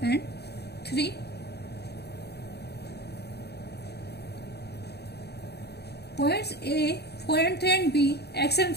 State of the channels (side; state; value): right; late; 0.48 ms